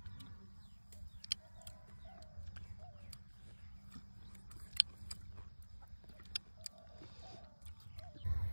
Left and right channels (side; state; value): both; inverted; correlation -1.00